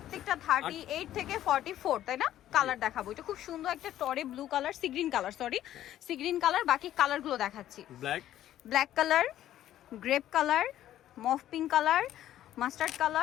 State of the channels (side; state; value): right; quieter; 12.4 dB